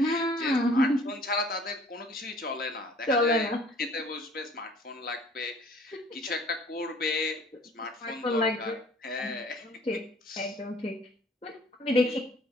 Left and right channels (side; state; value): both; normal; correlation 0.53